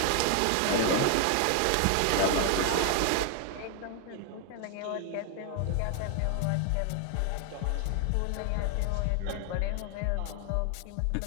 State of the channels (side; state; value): both; different; correlation 0.00